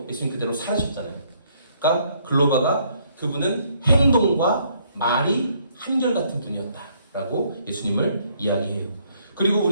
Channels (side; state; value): both; inverted; correlation -0.67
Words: 예수님 그대로 살으셨잖아요. 그러니까 글로바가 그분은 행동과 말이 한결같은 분이었다라고 예수님을 이야기해요. 그리고